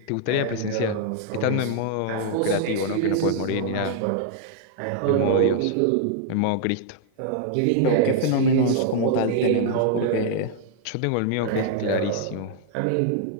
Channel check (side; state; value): both; different; correlation -0.01